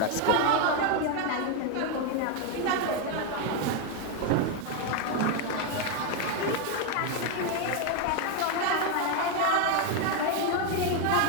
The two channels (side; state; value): both; different; correlation 0.01